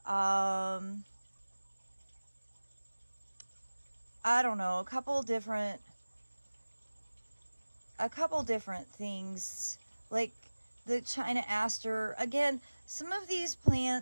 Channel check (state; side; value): inverted; both; correlation -1.00